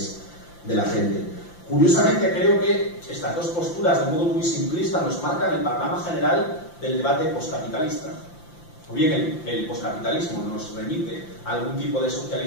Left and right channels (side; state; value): right; late; 5.8 ms